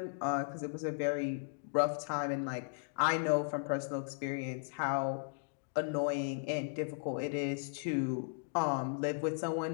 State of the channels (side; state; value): right; silent; digital silence